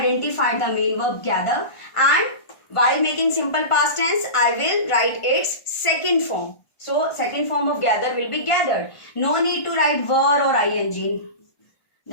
the main verb gather, and while making simple past tense I will write its second form. So second form of gather will be gathered. No need to write were or ing,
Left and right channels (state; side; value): late; right; 1.4 ms